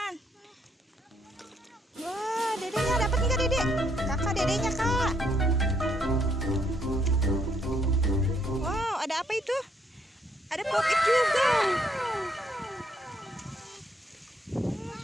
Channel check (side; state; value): both; normal; correlation 0.71